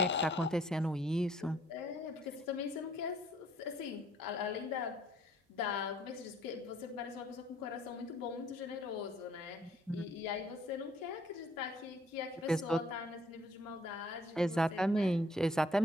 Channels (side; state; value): both; normal; correlation 0.62